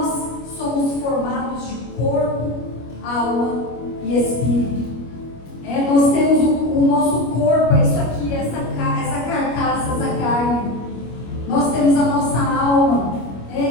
somos formados de corpo, alma e espírito. Nós temos o nosso corpo, é isso aqui, essa carcaça, essa carne. Nós temos a nossa alma,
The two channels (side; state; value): right; late; 25 ms